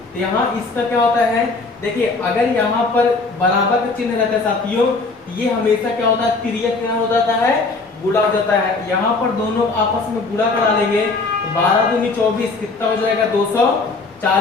तो यहाँ इसका क्या होता है? देखिए अगर यहाँ पर बराबर का चिन्ह रहता है साथियों, ये हमेशा क्या होता है? तिर्यक क्या हो जाता है? गुणा हो जाता है। यहाँ पर दोनों आपस में गुणा करा लेंगे, 12 दूनी 24 कितना हो जाएगा?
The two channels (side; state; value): right; quieter; 3.8 dB